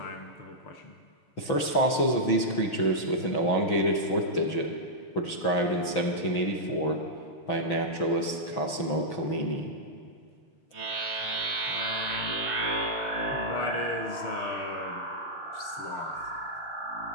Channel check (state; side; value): late; right; 6.2 ms